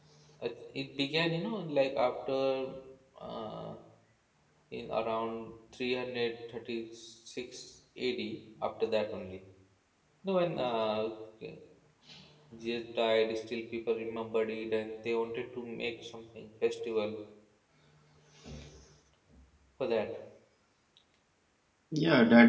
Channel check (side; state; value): both; identical; correlation 1.00